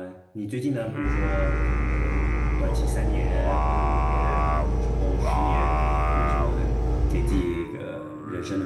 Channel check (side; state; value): both; identical; correlation 1.00